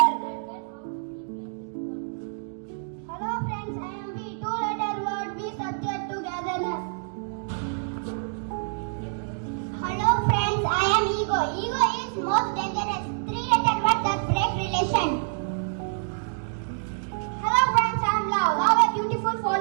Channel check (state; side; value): silent; left; digital silence